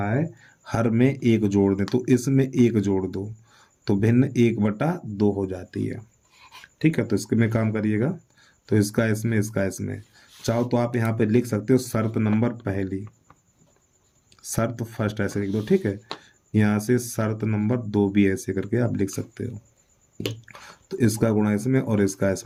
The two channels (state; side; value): identical; both; correlation 1.00